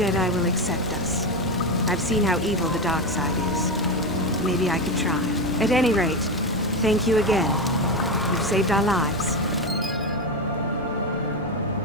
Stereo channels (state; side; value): normal; both; correlation 0.14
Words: will accept us. I've seen how evil the dark side is. Maybe I could try. At any rate, thank you again. You've saved our lives.